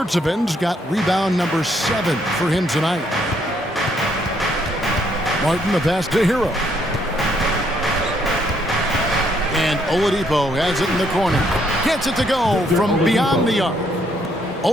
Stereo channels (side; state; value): both; normal; correlation 0.70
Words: got rebound number 7 for him tonight. Martin the pass to Hero. And Oladipo has it in the corner. Gets it to go from beyond the arc.